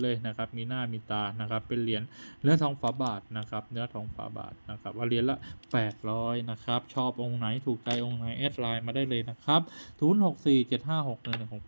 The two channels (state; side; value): inverted; both; correlation -1.00